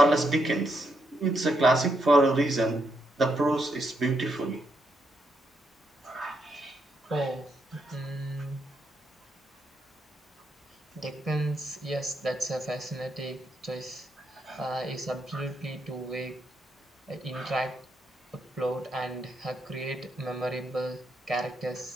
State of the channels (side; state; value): both; normal; correlation 0.79